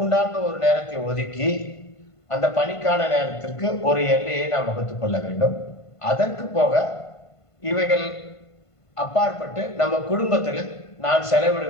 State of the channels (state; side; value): late; right; 1.5 ms